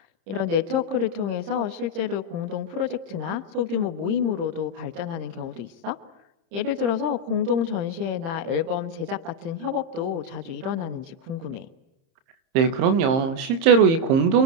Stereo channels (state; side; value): late; left; 30 ms